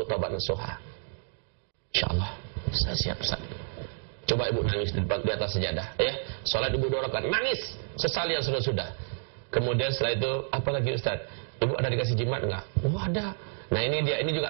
taubat nasuha. InsyaAllah, saya siap, Ustaz. Coba ibu nangis di atas sejadah, ya. Salat ibu 2 rakaat, nangis. Sesali yang sudah-sudah. Kemudian setelah itu, apa lagi, Ustaz? Ibu ada dikasih jimat enggak? Oh, ada. Nah, ini dia, ini juga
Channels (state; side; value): silent; left; digital silence